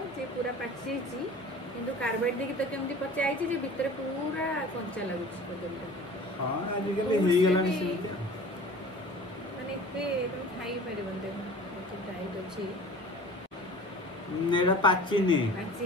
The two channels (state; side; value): normal; both; correlation 0.42